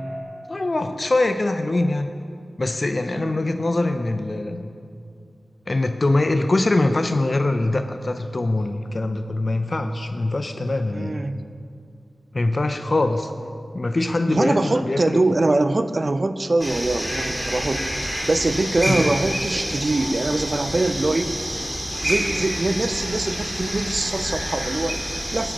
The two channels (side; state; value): both; normal; correlation 0.96